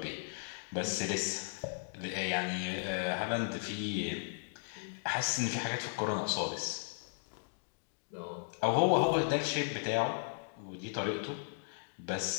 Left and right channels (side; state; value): right; silent; digital silence